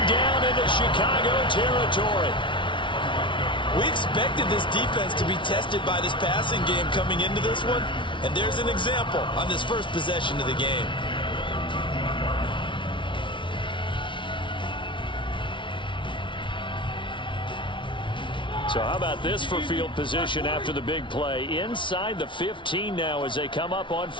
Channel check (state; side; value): late; right; 0.24 ms